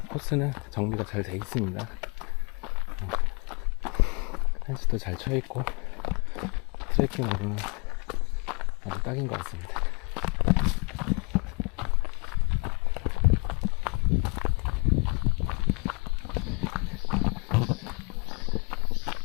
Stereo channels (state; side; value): quieter; right; 32.4 dB